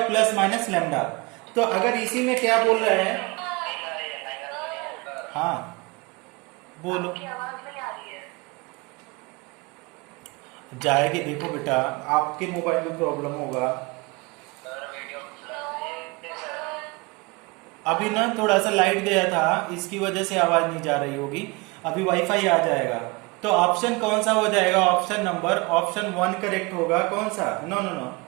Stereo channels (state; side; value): quieter; left; 26.6 dB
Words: प्लस माइनस लेमडा। तो अगर इसी में क्या बोल रहा है, हाँ बोलो, जाएगी, देखो बेटा आपके मोबाइल में प्रॉब्लम होगा। अभी ना थोड़ा सा लाइट गया था, इसकी वजह से आवाज नहीं जा रही होगी, अभी वाईफाई आ जाएगा। तो ऑप्शन कौन सा हो जाएगा, ऑप्शन नंबर, ऑप्शन 1 करेक्ट होगा, कौन सा, no no